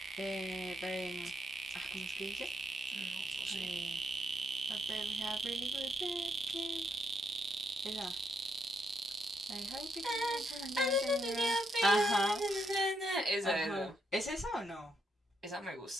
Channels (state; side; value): normal; both; correlation 0.77